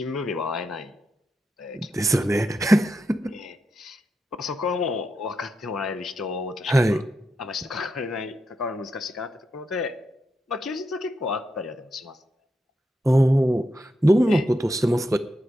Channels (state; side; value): normal; both; correlation 0.85